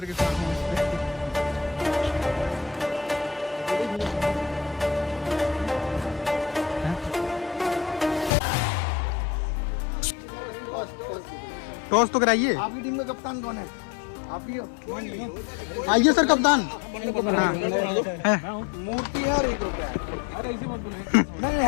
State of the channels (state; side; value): drops out; right; at 8.3 s